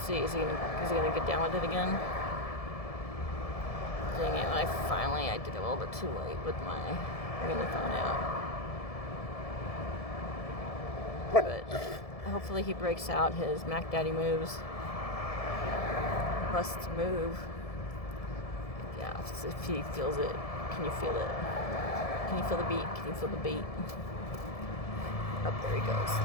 see. Is he gonna get down with it again? Dang it! I did it a little bit too late with my bringing the phone out. But hopefully he breaks out his Mac Daddy moves. Busts move. Yeah, if he feels it. Can you feel it? Can you feel the beat? Can you feel the beat? Up there he goes.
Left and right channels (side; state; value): right; late; 1.7 ms